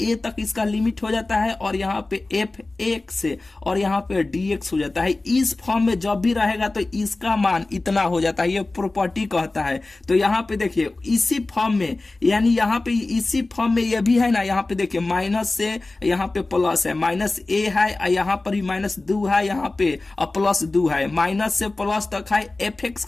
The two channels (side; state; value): right; quieter; 3.1 dB